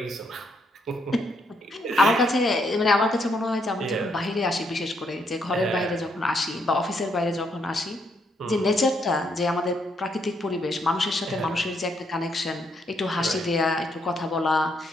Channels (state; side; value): normal; both; correlation 0.74